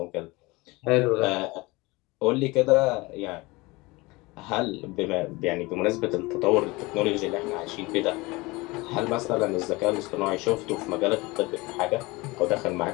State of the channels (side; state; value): right; quieter; 23.0 dB